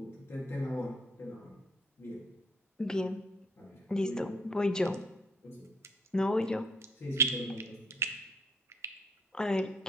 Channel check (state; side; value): normal; both; correlation 0.66